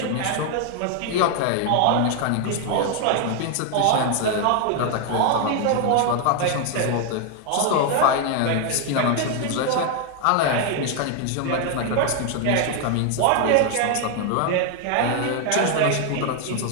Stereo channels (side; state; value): both; different; correlation 0.00